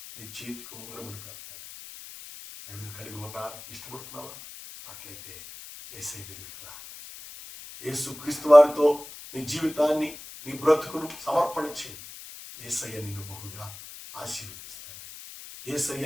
నీ చేతికి ఉంగరమును పెడతాడు. అవి కలిగి ఉండడానికి ఇష్టపడుతున్నావా? అట్లయితే యేసయ్య దగ్గరికి రా. యేసు క్రీస్తు వారితో నీ జీవితాన్ని, నీ బ్రతుకును సమర్పణ చేయి. యేసయ్య నిన్ను బహుగా ఆశీర్వదిస్తాడు.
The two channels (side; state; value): left; noise; hiss, 15 dB below the sound